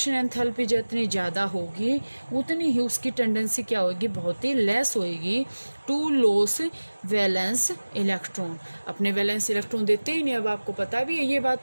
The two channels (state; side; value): inverted; both; correlation -1.00